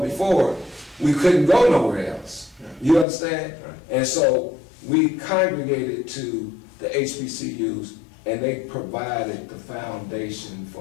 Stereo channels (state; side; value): drops out; right; at 3.1 s